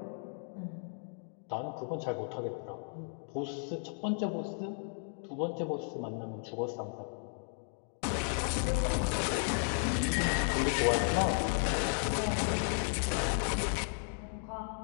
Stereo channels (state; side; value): silent; right; 55 dB below the other